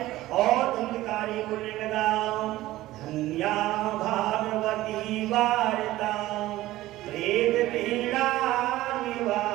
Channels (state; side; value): quieter; left; 16.3 dB